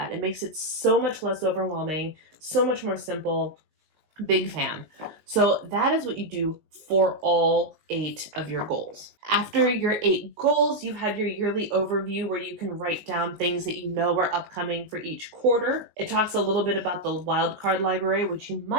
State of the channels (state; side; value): late; left; 19 ms